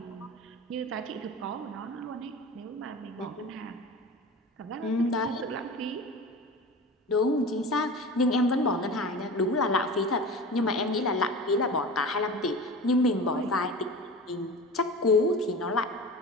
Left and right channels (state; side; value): normal; both; correlation 0.33